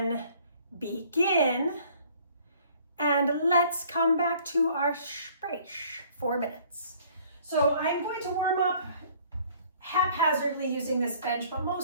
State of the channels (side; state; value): both; inverted; correlation -0.56